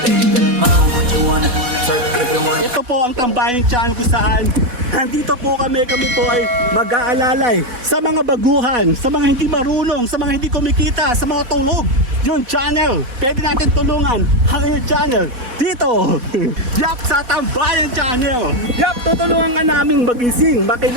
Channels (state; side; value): late; left; 4.1 ms